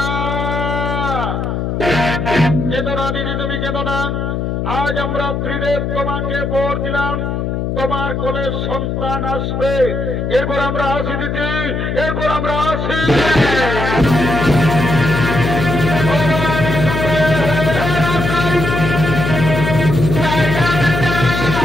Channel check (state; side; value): noise; left; hum, 2 dB below the sound